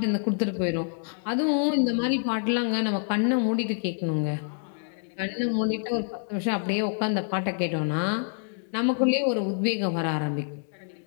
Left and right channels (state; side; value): silent; right; digital silence